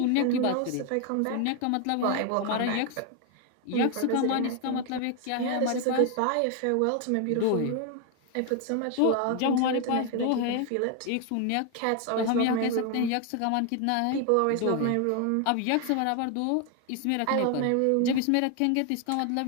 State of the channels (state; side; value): different; both; correlation 0.01